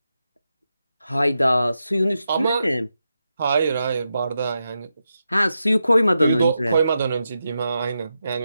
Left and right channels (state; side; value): inverted; both; correlation -0.87